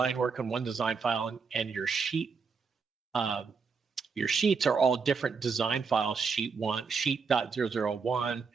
work on one design file and your sheets are all different design files, sheet 1, sheet.001,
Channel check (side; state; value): left; quieter; 5.3 dB